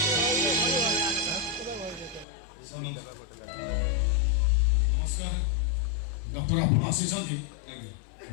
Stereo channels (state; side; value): drops out; right; at 2.2 s